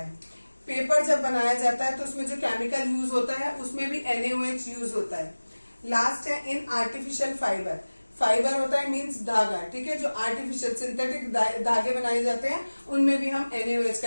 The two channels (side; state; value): both; inverted; correlation -1.00